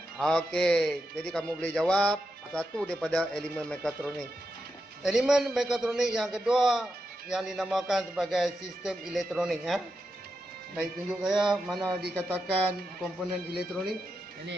Okey, jadi kamu boleh jawab satu daripada elemen mekatronik. Elemen mekatronik yang kedua yang dinamakan sebagai sistem elektronik, ya. Baik, tunjuk saya mana dikatakan komponen elektronik.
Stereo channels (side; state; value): both; normal; correlation 0.87